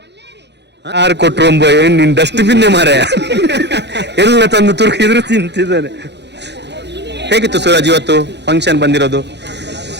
ಯಾರು ಕೊಟ್ರು ಏನ್ ನಿನ್ ಡಸ್ಟ್ಬಿನ್ನೇ ಮಾರೆ ಎಲ್ಲ ತಂದು ತುರುಕಿದ್ರು ತಿಂತಿದ್ದಾನೆ. ಹೇಗಿತ್ತು ಸೂರಜ್ ಇವತ್ತು ಫಂಕ್ಷನ್ ಬಂದಿರೋದು?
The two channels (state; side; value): late; left; 0.50 ms